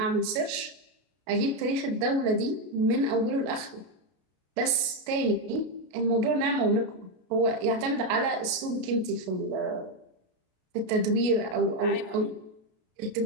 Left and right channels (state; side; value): late; left; 32 ms